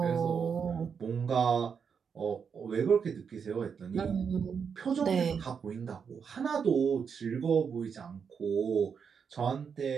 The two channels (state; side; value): quieter; left; 6.5 dB